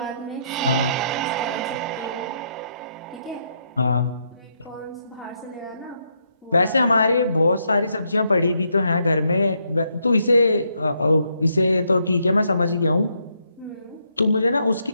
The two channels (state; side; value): inverted; both; correlation -0.76